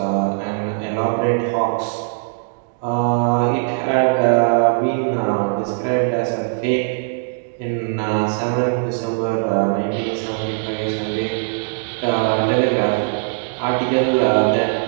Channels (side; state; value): left; silent; digital silence